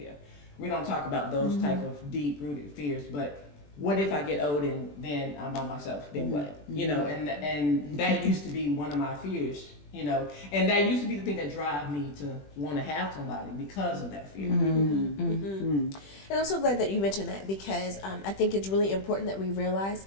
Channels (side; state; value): right; late; 21 ms